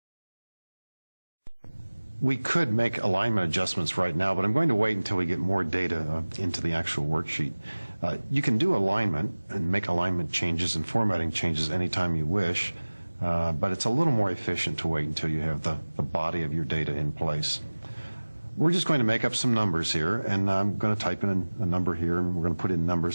We could make alignment adjustments right now, but I'm going to wait until we get more data into the actual worksheet. You can do alignment and make alignment changes and formatting changes anytime you wish, but it's a little more efficient to wait until you have the body of your data in place. We're just going to make up some numbers here, and I'm going to type in a number here, and we're going to put in numbers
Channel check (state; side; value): inverted; both; correlation -1.00